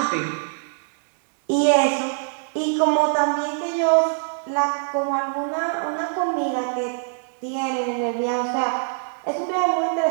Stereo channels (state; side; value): silent; left; digital silence